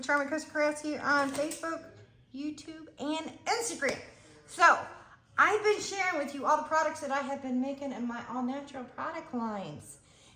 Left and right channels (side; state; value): both; identical; correlation 1.00